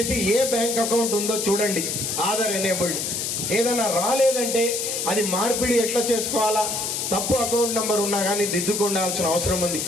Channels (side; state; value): left; noise; hiss, 2 dB below the sound